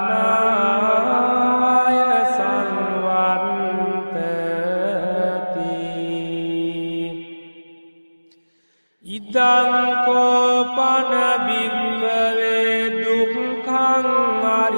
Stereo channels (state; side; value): inverted; both; correlation -1.00